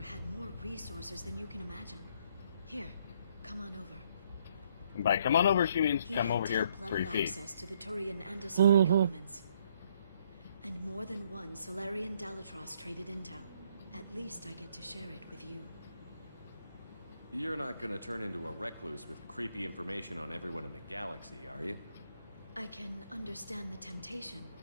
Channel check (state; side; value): inverted; both; correlation -0.68